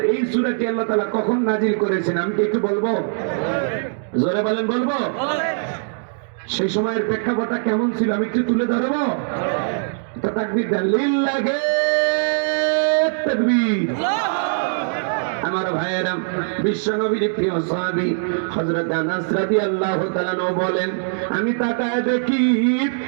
এই সূরাটি আল্লাহ তাআলা কখন নাজিল করেছেন আমি কি একটু বলবো? জোরে বলেন, বলবো? সেই সময়ের প্রেক্ষাপটটা কেমন ছিল আমি একটু তুলে ধরবো। তো তাকবীর দেন, লিল্লাহি তাকবীর। আমার ভাইয়েরা, বিশ্বনবীর প্রিয় সাহাবী হযরত আনাস রাদিয়াল্লাহু তাআলা বলেন, আমি তাকায় দেখি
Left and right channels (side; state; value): left; silent; digital silence